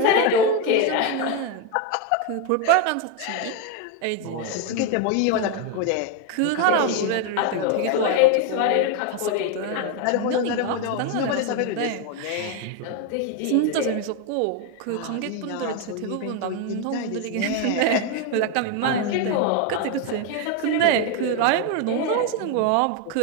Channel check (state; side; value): different; both; correlation 0.02